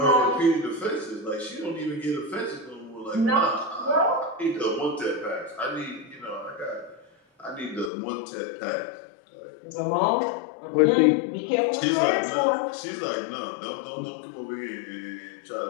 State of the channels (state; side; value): drops out; right; at 7.9 s